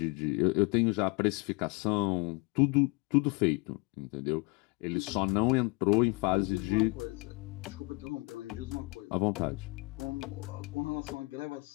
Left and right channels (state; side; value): quieter; right; 27.8 dB